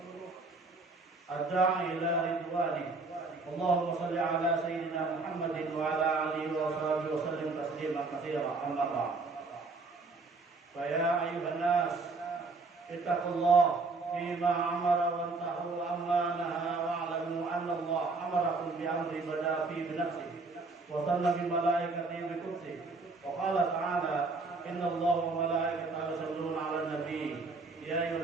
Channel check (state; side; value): quieter; left; 3.7 dB